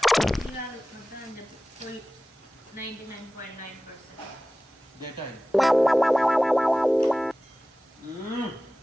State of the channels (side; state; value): both; normal; correlation 0.97